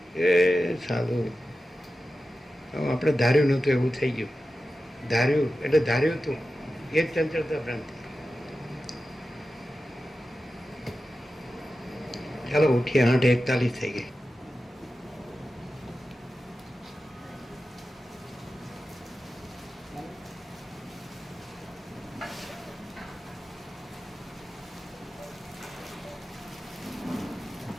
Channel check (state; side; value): normal; both; correlation 0.93